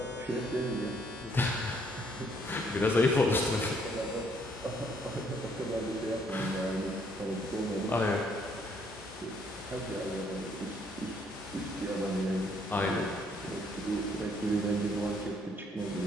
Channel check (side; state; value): both; normal; correlation 0.67